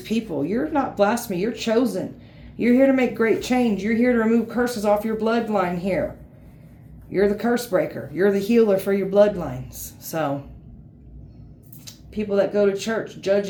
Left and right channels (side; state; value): both; identical; correlation 1.00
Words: people. You're not blasphemy. You're chosen. You're here to make great change. You're here to remove curses off your bloodline here. You're the curse breaker. You're the healer for your bloodlines. So, people that go to church